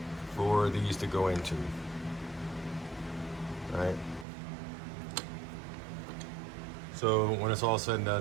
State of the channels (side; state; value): left; drops out; at 4.2 s